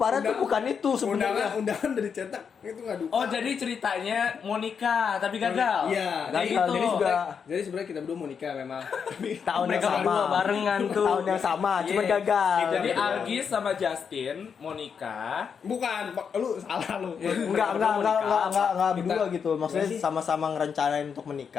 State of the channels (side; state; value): right; quieter; 6.6 dB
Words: tuh bukan itu sebenarnya. undangan dari cetak itu nggak duka. Oh, jadi ceritanya mau nikah tapi gagal. Iya. Gagal, Kayak gitu. jadi juga Jadi sebenarnya kita berdua mau nikah memang. Tapi tahun yang Mereka sama. berdua barengan tuh. Tahun yang sama, cuman Iya. gagal. Jadi Gitu. Algis sama Justin mau nikah. bukan, lu salah lu. Enggak berdua Kita- gitu. Maksudnya Gimana sih? sama-sama ngerencanain untuk